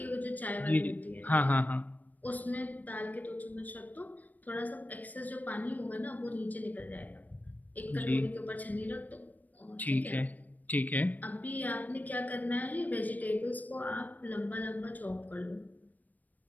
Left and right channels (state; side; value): late; right; 0.081 ms